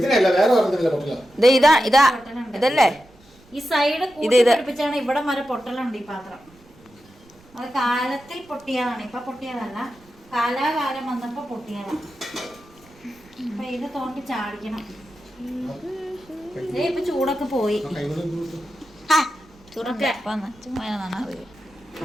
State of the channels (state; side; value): noise; right; rumble, 27 dB below the sound